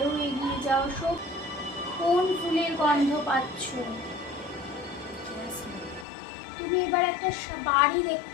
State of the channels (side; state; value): right; drops out; at 6.1 s